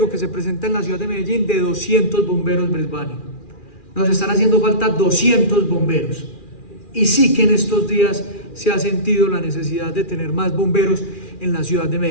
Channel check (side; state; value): right; late; 2.4 ms